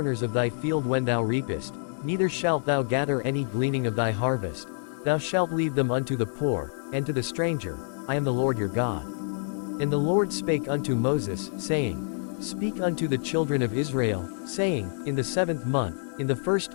of thy field when thou reapest, neither shalt thou gather any gleaning of thy harvest. Thou shalt leave them unto the poor, and to the stranger. I am the Lord your God. And the Lord spake unto Moses, saying, Speak unto the children of Israel, saying, In the 7th month, in the 1st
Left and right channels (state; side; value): silent; right; digital silence